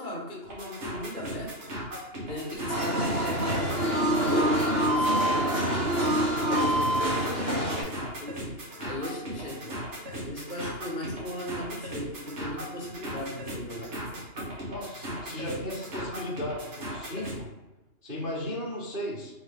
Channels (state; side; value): late; left; 2.8 ms